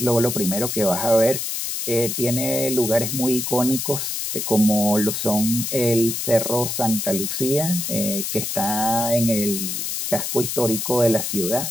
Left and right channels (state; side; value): noise; left; hiss, 3 dB below the sound